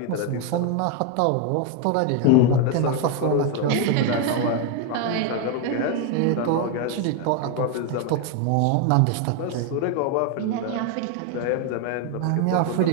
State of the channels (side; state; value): both; different; correlation 0.01